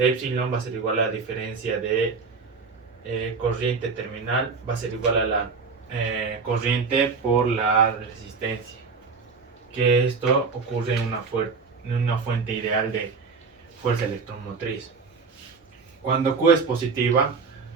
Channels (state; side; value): quieter; left; 4.8 dB